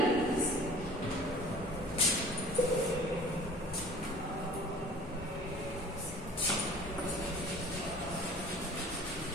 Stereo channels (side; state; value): both; normal; correlation 0.46